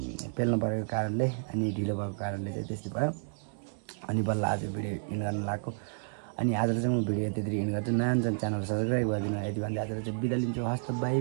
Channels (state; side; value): silent; left; digital silence